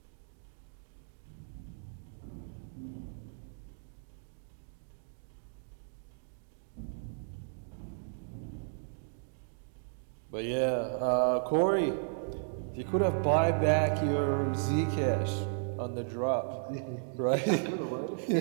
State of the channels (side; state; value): left; silent; digital silence